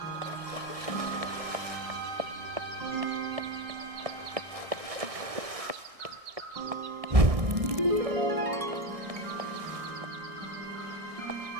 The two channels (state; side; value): late; left; 1.6 ms